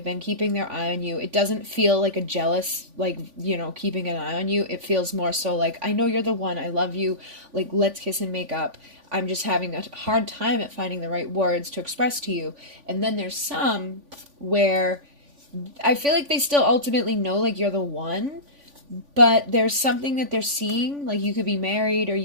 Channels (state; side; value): late; left; 3.5 ms